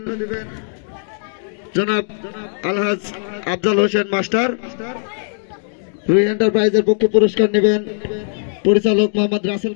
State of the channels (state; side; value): silent; right; digital silence